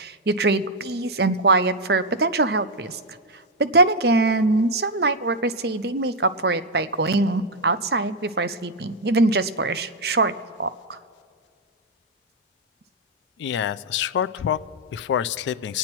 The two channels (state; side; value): normal; both; correlation 0.01